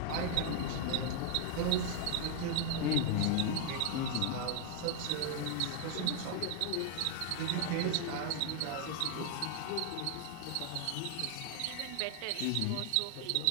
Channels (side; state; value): both; different; correlation 0.00